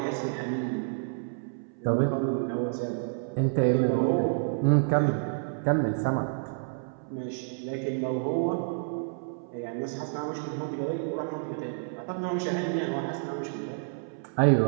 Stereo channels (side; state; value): left; silent; 58 dB below the other